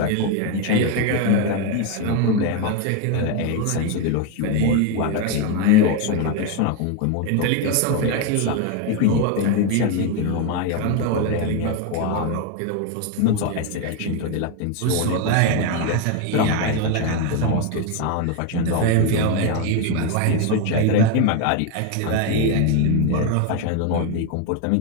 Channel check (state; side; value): different; both; correlation 0.02